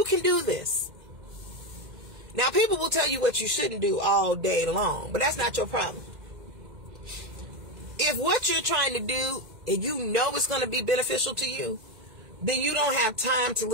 can do this. Now, people will tell you what you shouldn't do all day long, but that's not your problem. If what you're trying to do, and you know it's going to be beneficial to you, then you don't have time to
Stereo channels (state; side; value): late; left; 2.1 ms